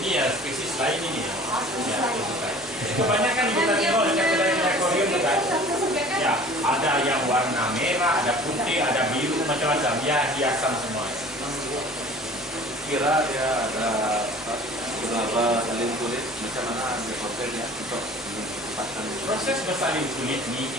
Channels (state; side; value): normal; both; correlation 0.46